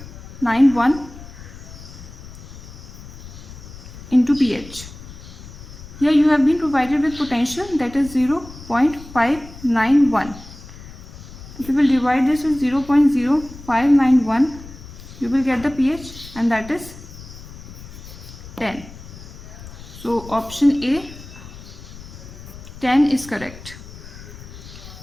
into pH. Here you have been provided with potential, that is 0.591. If you will divide this with 0.0591, you will get the pH, and that is 10. So option A, 10 is correct.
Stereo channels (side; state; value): left; noise; rumble, 15 dB below the sound